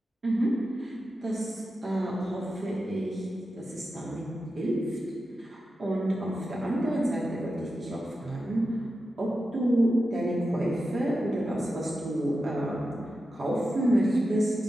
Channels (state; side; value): normal; both; correlation 0.91